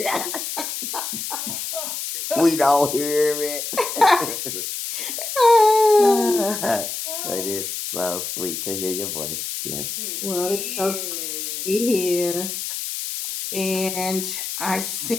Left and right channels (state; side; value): noise; left; hiss, 5 dB below the sound